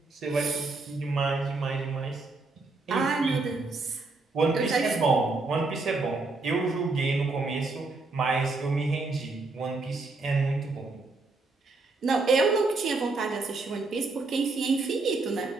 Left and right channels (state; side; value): quieter; left; 3.6 dB